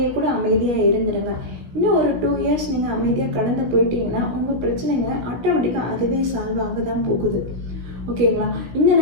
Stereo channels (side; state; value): left; late; 17 ms